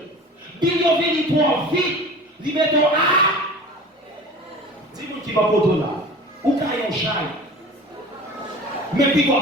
Bil yo vini toi vite, li mettons à. Dis-moi qui va pour toi là. Ou caillon chai. Mais puis quoi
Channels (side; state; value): both; normal; correlation 0.39